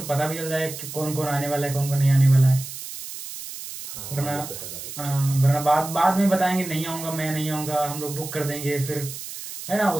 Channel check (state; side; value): noise; right; hiss, 10 dB below the sound